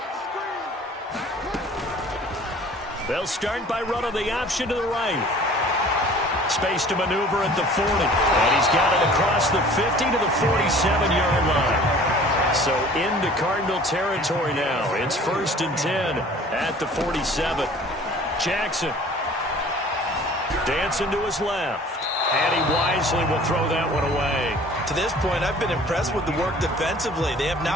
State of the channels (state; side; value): normal; both; correlation 0.48